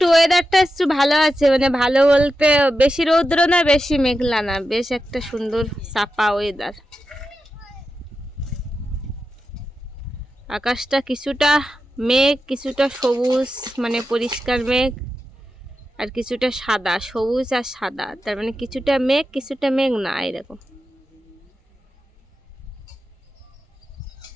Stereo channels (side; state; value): both; normal; correlation 0.90